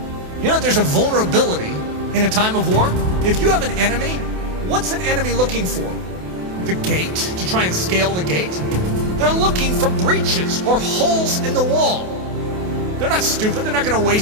There's a vulnerability in a time of war. If you have an enemy, what's an enemy looking for? The gate, to try and scale the gate? They're looking for breaches or holes in the wall. They're not stupid. They're not going to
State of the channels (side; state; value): left; late; 28 ms